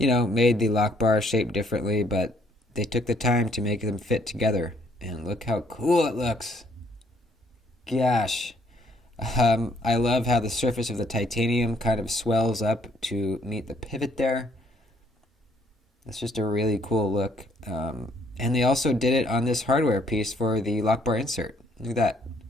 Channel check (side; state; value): both; normal; correlation 0.66